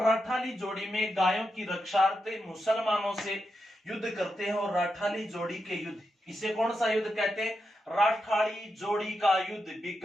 राठाली जोड़ी में गायों की रक्षार्थ मुसलमानों से युद्ध करते हैं। और राठाली जोड़ी के युद्ध, इसे कौन सा युद्ध कहते हैं? राठाली जोड़ी का युद्ध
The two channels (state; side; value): normal; both; correlation 0.86